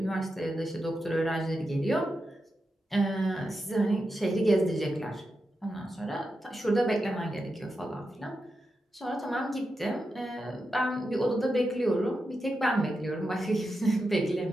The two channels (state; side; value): normal; both; correlation 0.88